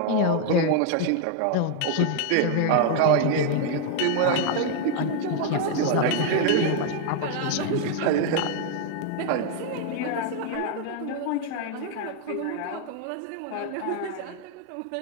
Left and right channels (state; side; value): different; both; correlation 0.00